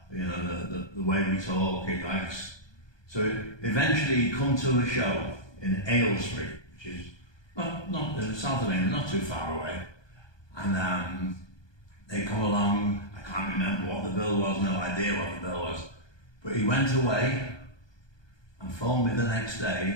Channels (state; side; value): late; right; 1.2 ms